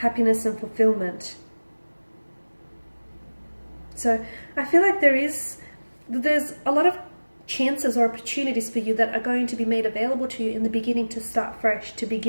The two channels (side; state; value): both; inverted; correlation -1.00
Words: and fulfillment. So I feel like there's a lot of chances or opportunities for you that are going to be made available to you in the beginning to start fresh, to